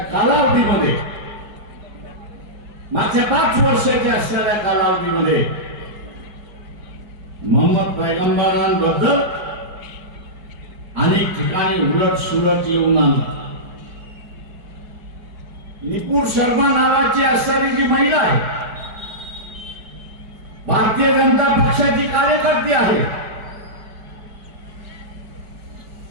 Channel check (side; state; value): left; late; 4.8 ms